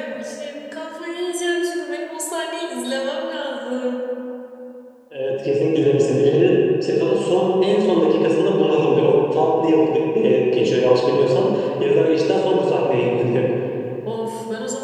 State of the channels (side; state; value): both; identical; correlation 1.00